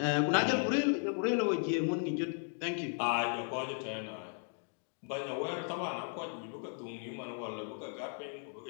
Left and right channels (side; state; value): right; silent; 54 dB below the other